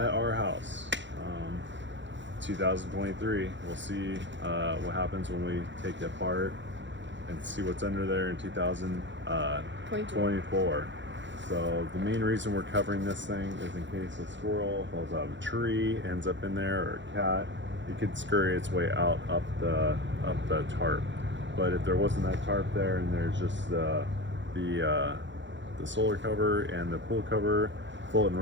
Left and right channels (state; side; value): late; left; 0.54 ms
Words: our house. 2023. We'll see what happens when we take it apart and see what's under there in 2024. So the main reason we're covering this thing is in case a squirrel falls out of a tree, ends up in there, or a cat, it could scurry its way out up the tarp. But if there wasn't that tarp there and there's just the solar cover and the pool cover floating